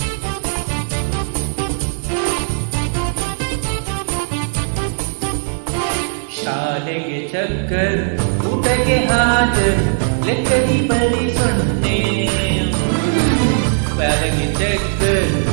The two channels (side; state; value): left; silent; digital silence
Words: ಶಾಲೆಗೆ ಚಕ್ಕರ್, ಊಟಕ್ಕೆ ಹಾಜರ್, ಲೆಕ್ಕದಿ ಬರಿ ಸೊನ್ನೆ. ಶಾಲೆಗೆ ಚಕ್ಕರ್,